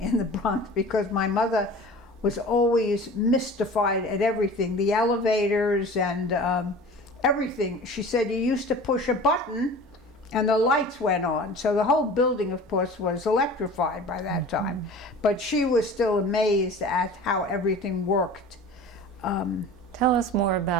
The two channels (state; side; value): normal; both; correlation 0.40